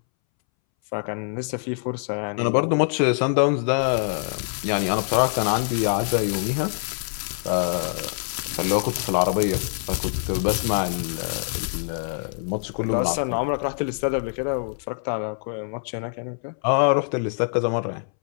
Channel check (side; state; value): right; silent; 62 dB below the other